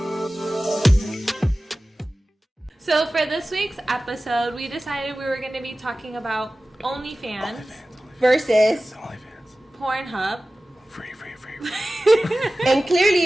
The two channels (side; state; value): both; normal; correlation 0.96